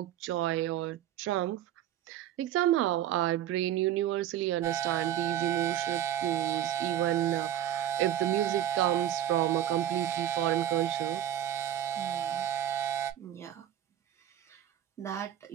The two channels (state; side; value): quieter; left; 11.4 dB